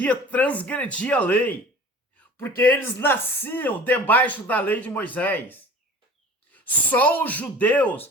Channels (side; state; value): both; normal; correlation 0.42